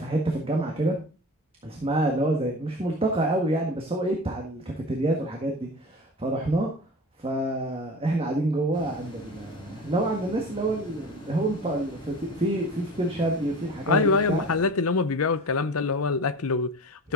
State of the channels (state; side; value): normal; both; correlation 0.35